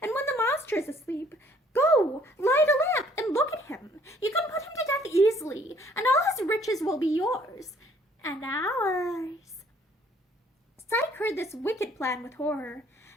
and when the monster is asleep, go, light a lamp, and look at him. You can put him to death easily, and all his riches will be yours, and ours." Psyche heard this wicked plan with horror.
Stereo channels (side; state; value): both; normal; correlation 0.60